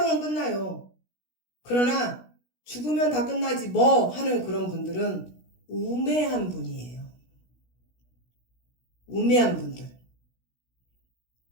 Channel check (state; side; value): late; right; 16 ms